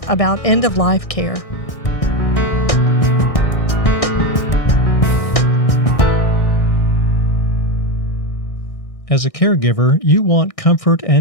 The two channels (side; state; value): right; late; 1.6 ms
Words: about end-of-life care. As a caregiver, you want comfort